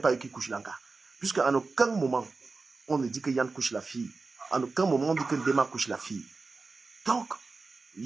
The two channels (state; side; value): quieter; left; 4.0 dB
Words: eux qui couchent l'anga. Puisqu'à aucun moment, on ne dit que Yann couche la fille. En aucun moment, on dit que Dema couche la fille. Donc,